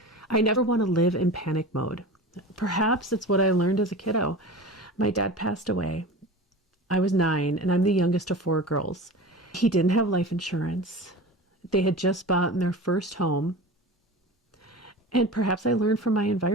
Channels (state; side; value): normal; both; correlation 0.33